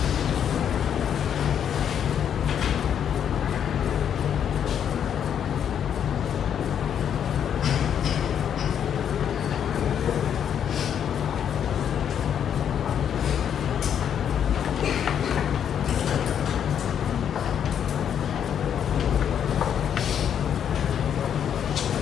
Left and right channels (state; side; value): quieter; right; 8.7 dB